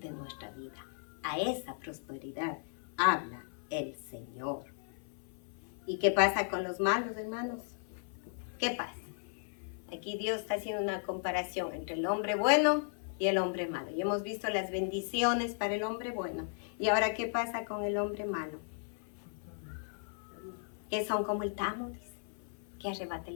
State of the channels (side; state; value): right; silent; 54 dB below the other